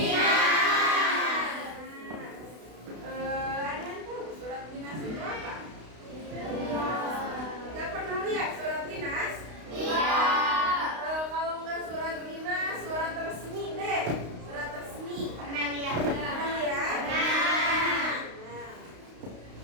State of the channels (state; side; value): late; left; 32 ms